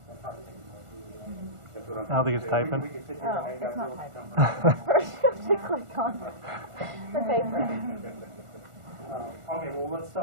I don't think it's typing. Oh, it's not typing. First you have to click on the paper. Okay, well, let's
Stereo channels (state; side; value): late; left; 1.4 ms